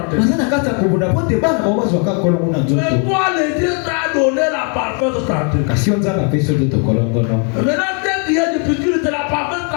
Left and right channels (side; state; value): right; quieter; 39.2 dB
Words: Bazana kata kubuna pote bana bawazo wakakola kuna nzoto. Mais toi, le Dieu t'a donné la parfaite santé. Kasi onza ba peso toto kolongo no. Maintenant, dès qu'il y a des piqûres, c'est la parfaite